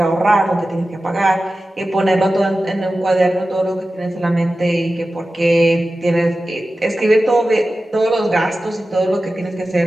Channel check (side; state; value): both; normal; correlation 0.94